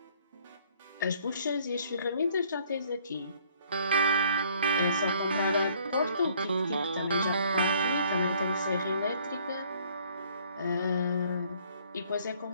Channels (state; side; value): inverted; both; correlation -0.60